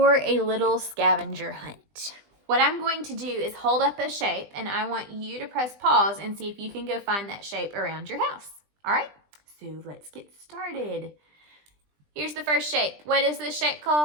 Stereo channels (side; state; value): left; late; 20 ms